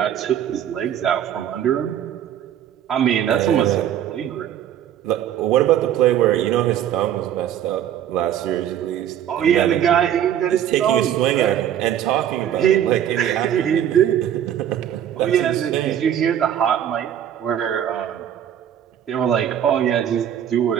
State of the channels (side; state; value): left; quieter; 10.3 dB